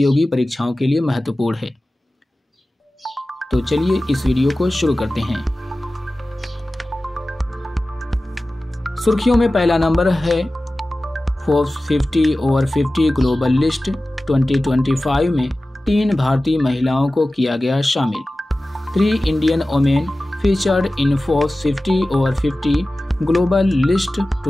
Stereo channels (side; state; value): both; normal; correlation 0.96